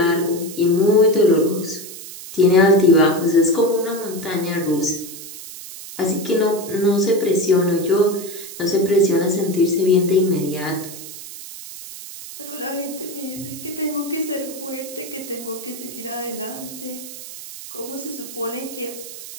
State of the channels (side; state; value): right; noise; hiss, 13 dB below the sound